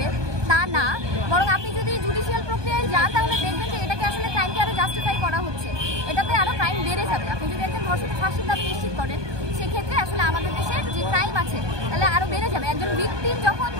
তা না, বরং আপনি যদি জুডিশিয়াল প্রক্রিয়ায় যান তাহলে দেখবেন যে এটাকে আসলে ক্রাইমকে আরও জাস্টিফাই করা হচ্ছে, এটাতে আরও ক্রাইম বেড়ে যাবে। আপনি যদি একজন ধর্ষকের ফাঁসির দাবি নিশ্চিত করেন সেক্ষেত্রে আসলে আমাদের দেশের যে ক্রাইম আছে তাহলে আরও বেড়ে যাবে। একজন ভিকটিম যখন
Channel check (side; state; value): left; late; 1.2 ms